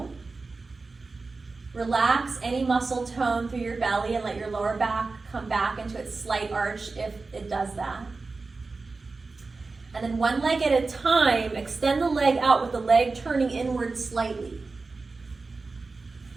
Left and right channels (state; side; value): quieter; left; 3.9 dB